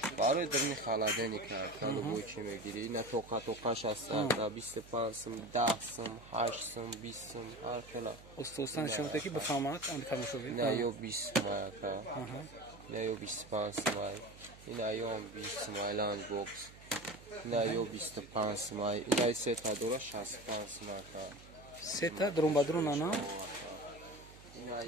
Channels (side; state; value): right; noise; hum, 20 dB below the sound